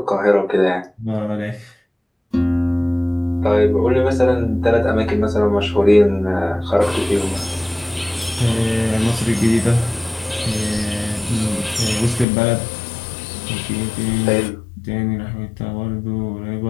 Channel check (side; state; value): right; drops out; at 12.2 s